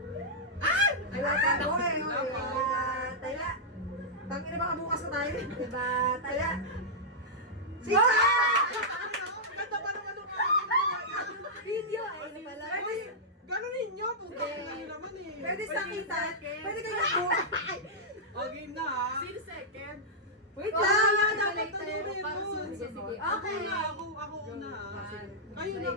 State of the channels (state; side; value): normal; both; correlation -0.09